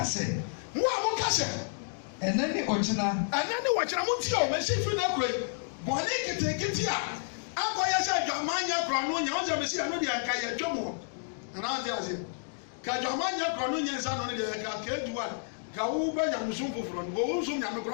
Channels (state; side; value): silent; right; digital silence